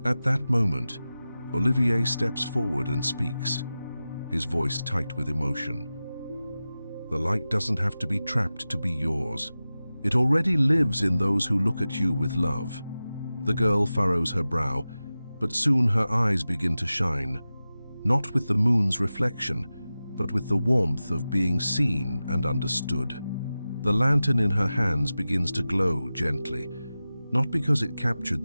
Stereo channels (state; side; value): inverted; both; correlation -0.95